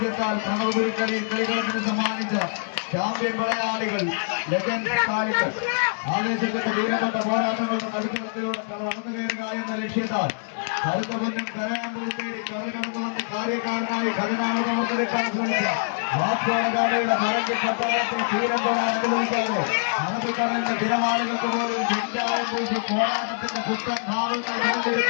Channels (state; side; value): silent; right; digital silence